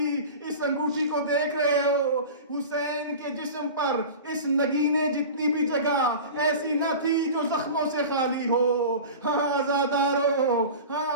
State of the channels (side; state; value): both; inverted; correlation -0.34